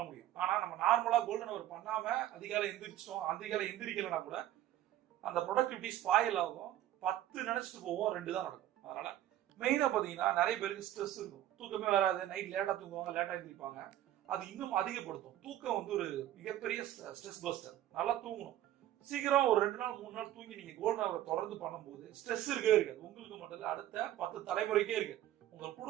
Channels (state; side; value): quieter; left; 13.0 dB